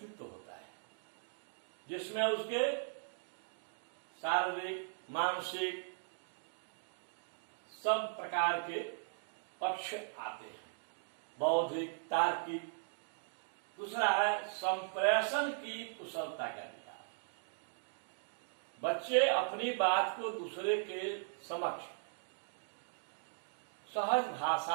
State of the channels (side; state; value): left; silent; digital silence